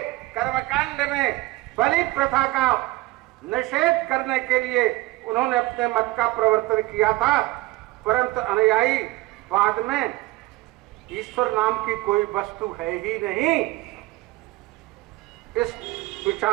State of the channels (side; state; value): left; quieter; 19.4 dB